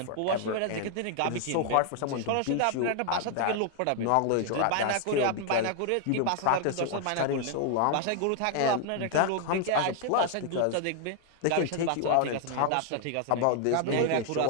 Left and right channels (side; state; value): both; different; correlation 0.00